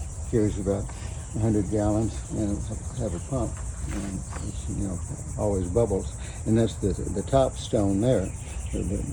Carries about 100 gallons, and it'll have a pump, and it's, always bubbles. And that's the top stone there.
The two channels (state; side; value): identical; both; correlation 1.00